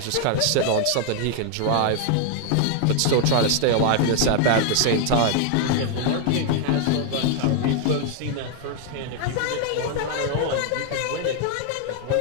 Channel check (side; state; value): both; different; correlation 0.00